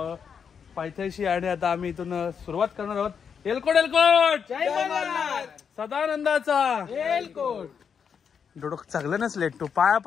पायथ्याशी आणि आता आम्ही इथून सुरुवात करणार आहोत. एलकोट एलकोट सदानंदाचा एलकोट. डोडो चांगलं लेट तू पाया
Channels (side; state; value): right; quieter; 6.9 dB